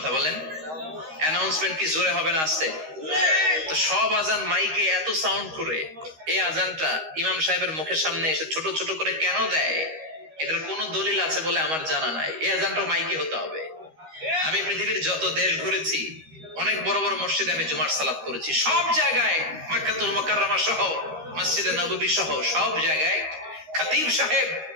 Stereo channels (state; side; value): late; left; 13 ms